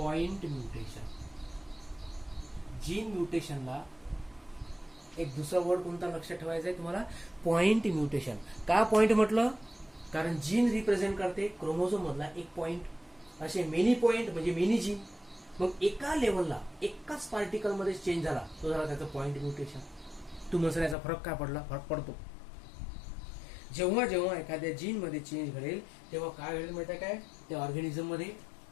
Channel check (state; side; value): drops out; right; at 21.0 s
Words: mutation. Gene म्युटेशनला एक दुसरा वर्ड कोणता लक्षात ठेवायचा आहे तुम्हाला, पॉइंट म्युटेशन. का पॉइंट म्हटलं, कारण जीन रिप्रेझेंट करते क्रोमोझोम मधला एक पॉइंट. असे मेनी पॉइंट म्हणजे मेनी जीन. मग एका लेवलला एकाच पार्टिकल मध्ये चेंज झाला तो झाला त्याचा पॉइंट म्युटेशन. तुम्हाला याचा फरक काय पडला, फरक पडतो जेव्हा जेव्हा एखाद्या जीन मध्ये चेंज घडेल तेव्हा काय घडेल माहिती आहे काय, त्या ऑर्गॅनिझम मध्ये